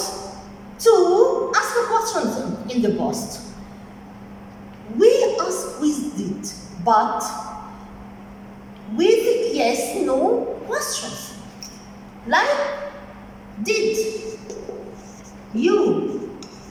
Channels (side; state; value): both; identical; correlation 1.00